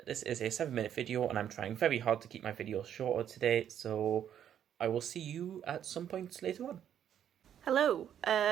this is a 7-minute video and I'm trying very hard to keep my videos shorter today. So I will see you at some point later on. Hello,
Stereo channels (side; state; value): left; quieter; 9.7 dB